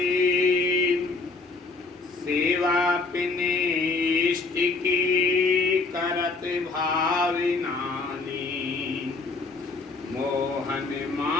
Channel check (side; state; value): right; quieter; 3.9 dB